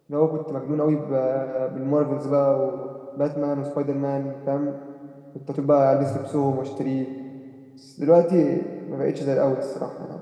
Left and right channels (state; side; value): identical; both; correlation 1.00